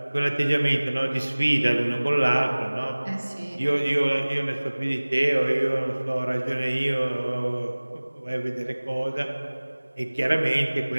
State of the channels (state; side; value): inverted; both; correlation -1.00